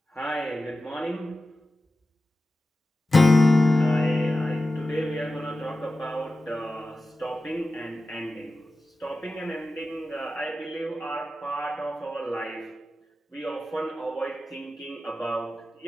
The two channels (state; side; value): normal; both; correlation 0.94